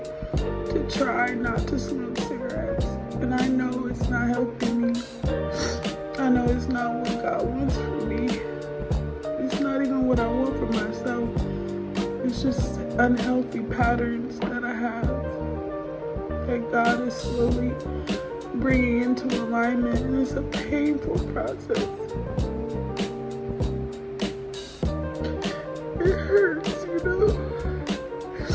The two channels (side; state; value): both; identical; correlation 1.00